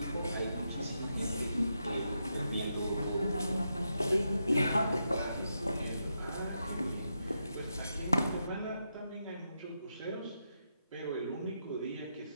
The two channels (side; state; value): both; inverted; correlation -0.84